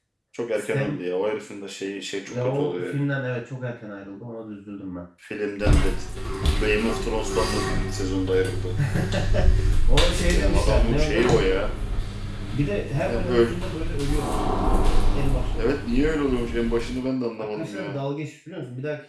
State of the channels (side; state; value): both; identical; correlation 1.00